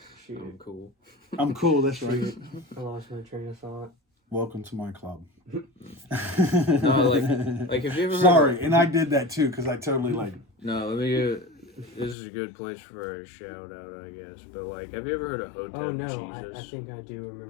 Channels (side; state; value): right; drops out; at 12.2 s